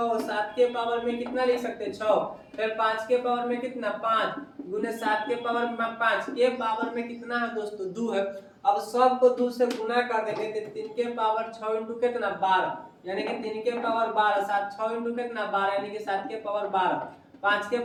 7 के पावर में कितना लिख सकते हैं 6, फिर 5 के पावर में कितना 5 गुने 7 के पावर में 5 के पावर में कितना है दोस्तों 2 है। अब सबको 2 से गुना कर देंगे तो 3 के पावर 6 इंटू कितना 12, यानी कि 3 के पावर 12, 7 6 इंटू कितना 12 यानी कि 7 के पावर 12, 5 के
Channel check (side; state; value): both; identical; correlation 1.00